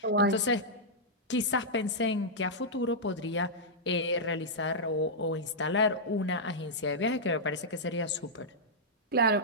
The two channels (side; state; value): both; normal; correlation -0.09